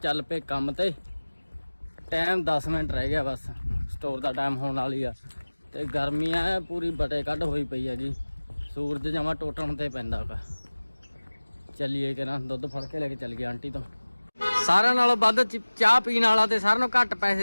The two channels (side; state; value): both; inverted; correlation -1.00